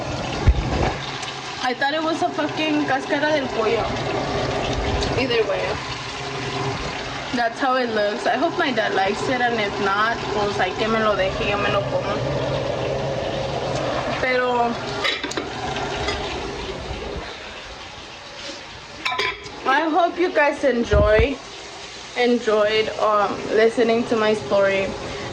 I thought it was a fucking cáscara del pollo. Either way. That's how it looks. I hope my dad likes it, and if not, pues hay que me lo deje y yo me lo como. Pero I hope you guys enjoyed listening to my story,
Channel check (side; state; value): both; identical; correlation 1.00